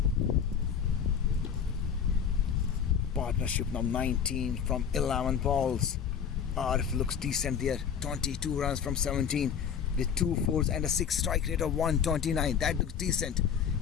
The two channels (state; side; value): quieter; right; 7.7 dB